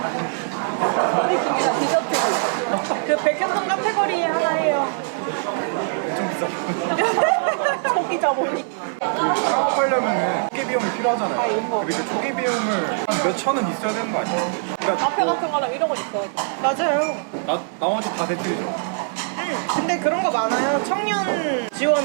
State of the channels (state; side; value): silent; left; digital silence